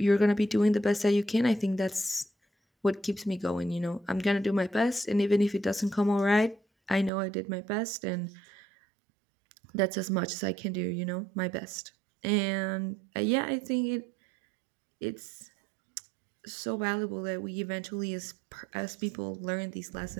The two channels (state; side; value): drops out; left; at 7.1 s